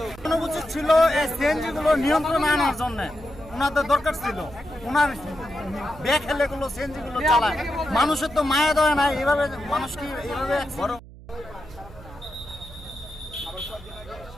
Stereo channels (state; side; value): noise; right; hum, 18 dB below the sound